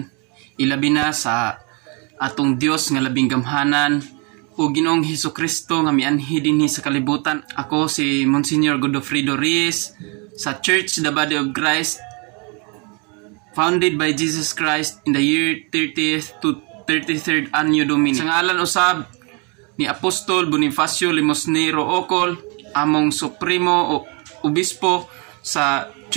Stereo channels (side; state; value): left; quieter; 32.7 dB